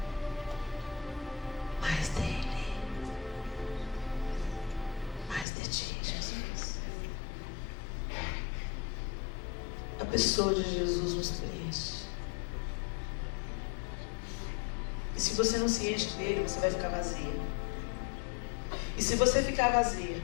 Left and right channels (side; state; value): right; drops out; at 5.5 s